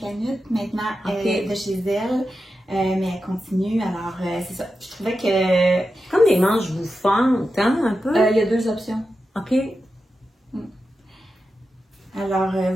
maintenant de chez elle. Mais elle continue, alors c'est ça. Je trouvais que... Comme des manches bouffantes, hein, un peu? Il y a 2 options. OK. Alors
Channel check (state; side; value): normal; both; correlation 0.90